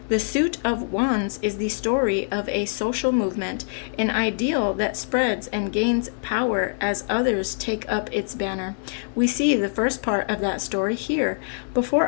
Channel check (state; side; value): silent; right; 62 dB below the other